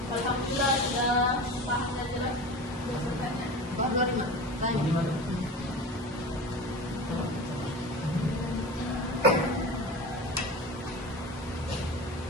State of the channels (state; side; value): normal; both; correlation 0.32